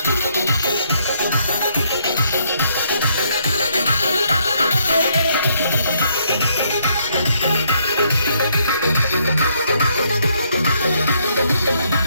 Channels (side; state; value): both; inverted; correlation -0.71